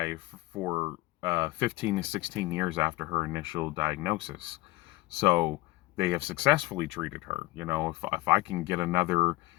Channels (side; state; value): right; quieter; 20.4 dB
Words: for 15 to 16 years after her initial diagnosis. So they have successfully treated her. If I can get another,